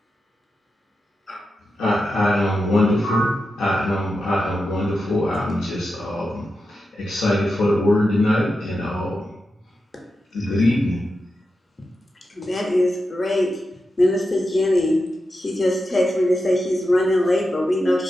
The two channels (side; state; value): both; normal; correlation 0.89